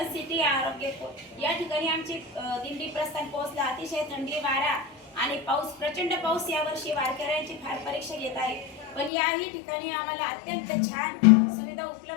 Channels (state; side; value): drops out; right; at 9.1 s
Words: सिटी आरोग्य या ठिकाणी आमची दिंडी प्रस्थान पोहोचला। अतिशय थंडी वारा आणि पाऊस, प्रचंड पाऊस यावर्षी वारकऱ्यांची फार परीक्षा घेत आहे। पण याही ठिकाणी आम्हाला अत्यंत छान सुविधा